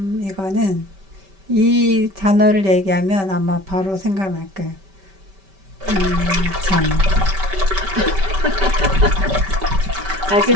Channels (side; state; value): left; late; 5.2 ms